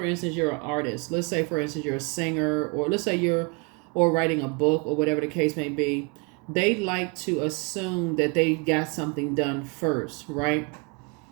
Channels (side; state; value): left; quieter; 31.6 dB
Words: instance, you're an artist. Let's say, for instance, you're a singer, or let's say you're or writing a book, or whatever the case may be. They like to assume that they got something done first, right?